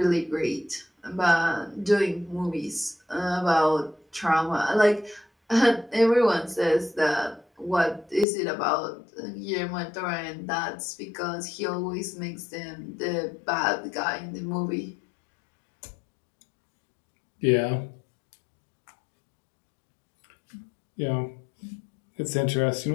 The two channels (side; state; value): right; drops out; at 8.2 s